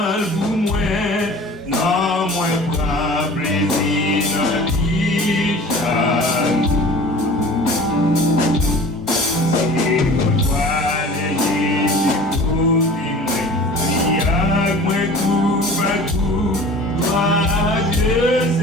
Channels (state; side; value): normal; both; correlation 0.43